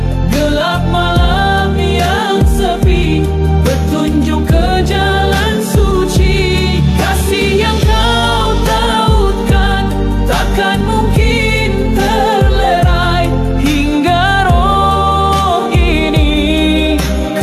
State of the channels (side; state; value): both; identical; correlation 1.00